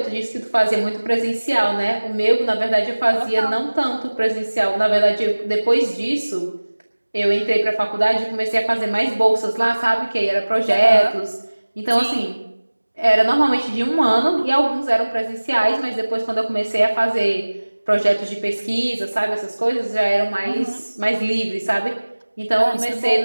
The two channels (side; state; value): both; inverted; correlation -1.00